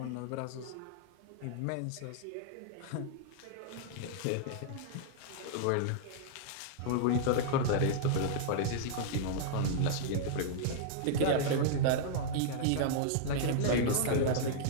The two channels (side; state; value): both; different; correlation -0.02